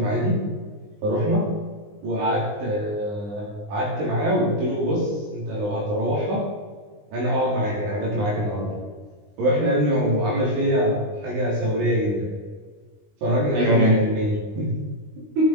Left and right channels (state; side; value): late; left; 19 ms